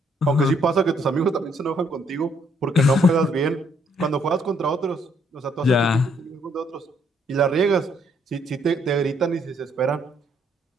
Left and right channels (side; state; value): both; normal; correlation 0.69